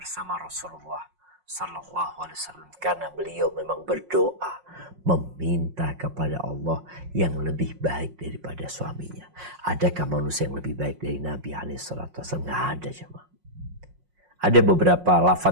Rasulullah Sallallahu Alaihi Wasallam, karena beliau memang berdoa meminta kepada Allah yang lebih baik daripada suaminya. Adakah manusia yang lebih baik dari Nabi SAW? Nggak ada, jemaah. Ada beberapa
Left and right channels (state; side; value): late; left; 5.5 ms